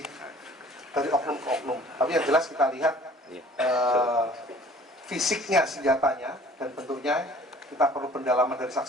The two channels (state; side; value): normal; both; correlation 0.51